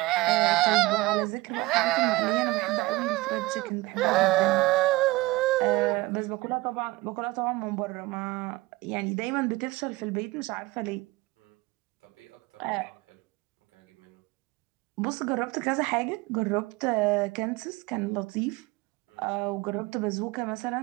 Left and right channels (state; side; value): quieter; left; 20.8 dB